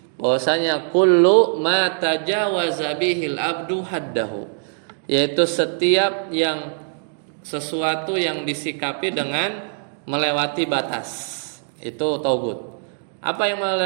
Bahwasanya kullu ma tajawaza bihil abdu haddahu, yaitu setiap yang sesuatu yang disikapi dengan melewati batas, itu taugut. Apa yang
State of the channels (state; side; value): silent; left; digital silence